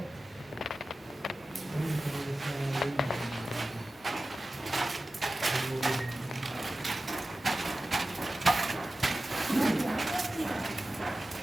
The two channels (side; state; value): both; normal; correlation 0.95